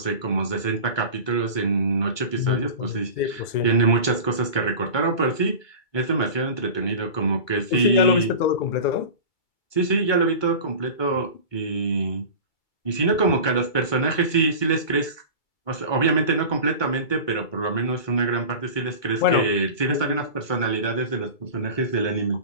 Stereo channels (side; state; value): right; late; 2.3 ms